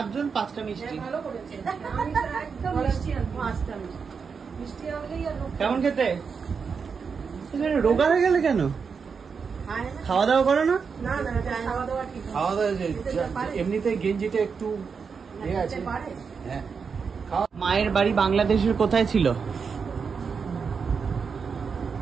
জন, 5টা মিষ্টি। কেমন খেতে? রোগা হয়ে গেলে কেন? খাওয়া দাওয়া করো না? খাওয়া দাওয়া এমনিতে গেঞ্জিটা একটু আছে। মায়ের বাড়ি বাংলাদেশের কোথায় ছিল?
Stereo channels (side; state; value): left; quieter; 5.8 dB